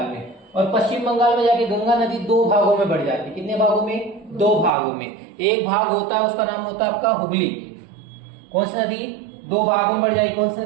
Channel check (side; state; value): left; drops out; at 4.7 s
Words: में। और पश्चिम बंगाल में जाके गंगा नदी दो भागों में बढ़ जाती है। कितने भागों में? दो भागों में। एक भाग होता है उसका नाम होता है आपका हुगली। कौन सी नदी? दो भागों में बढ़ जाएगी। कौन सी